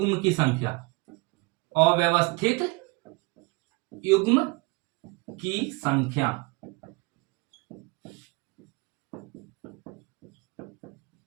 की संख्या, अव्यवस्थित युग्म की संख्या।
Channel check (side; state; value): left; quieter; 26.3 dB